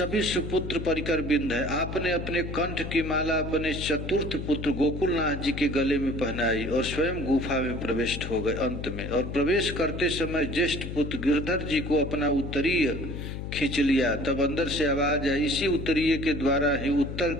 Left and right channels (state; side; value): noise; left; hum, 6 dB below the sound